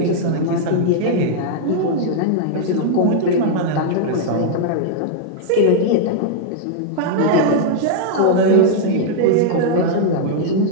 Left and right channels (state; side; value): different; both; correlation -0.01